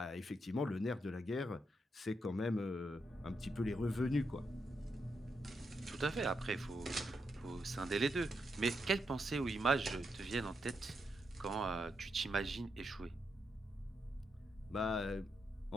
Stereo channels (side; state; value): both; normal; correlation 0.82